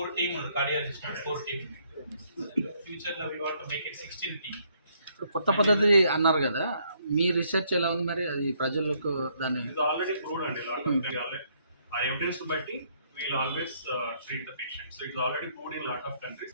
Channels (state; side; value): inverted; both; correlation -0.69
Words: టీమ్ కార్డియాలజిస్ట్ 4 టీమ్. ఫ్యూచర్ లో we want to make it 16 team. ఇప్పుడు కొత్త పద్ధతి అన్నారు కదా, మీ రీసెర్చ్ ఎలా ఉంది మరి? అది ప్రజలకు దాన్ని ఇది ఆల్రెడీ ప్రూవ్డ్ అండి. ఆ ఎవిడెన్స్ బట్టి wheel always treat the patient. So it's already proved in lot of